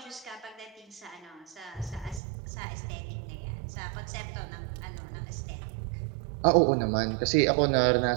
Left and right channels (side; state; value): left; drops out; at 2.2 s